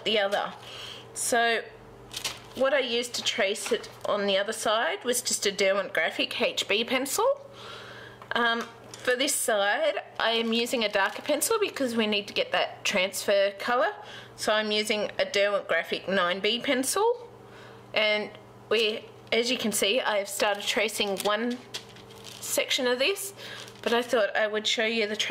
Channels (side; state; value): both; identical; correlation 1.00